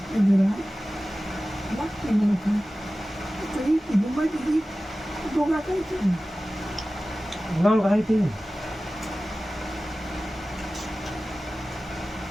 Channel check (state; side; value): normal; both; correlation 0.96